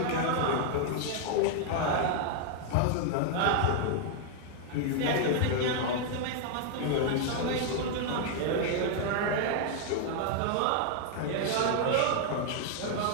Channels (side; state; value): both; different; correlation 0.00